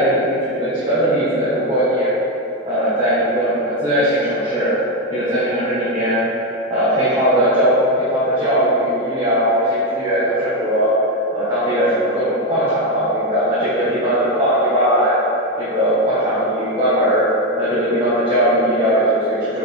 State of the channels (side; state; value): both; normal; correlation 0.07